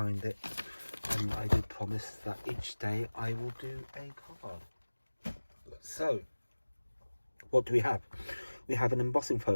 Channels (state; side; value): inverted; both; correlation -1.00